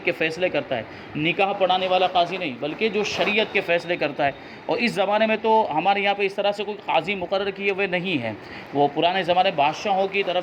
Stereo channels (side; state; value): both; identical; correlation 1.00